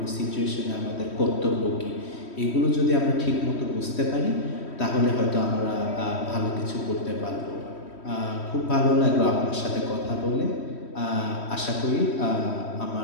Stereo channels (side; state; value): right; late; 3.1 ms